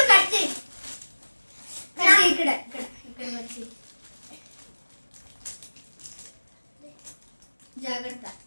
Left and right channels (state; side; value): inverted; both; correlation -1.00